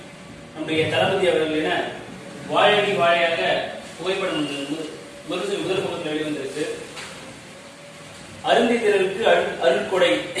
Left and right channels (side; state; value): both; identical; correlation 1.00